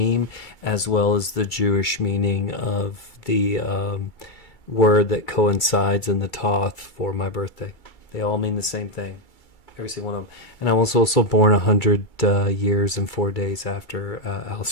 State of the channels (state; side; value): late; right; 2.3 ms